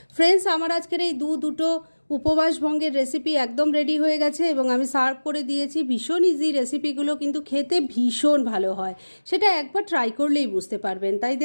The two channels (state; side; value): inverted; both; correlation -1.00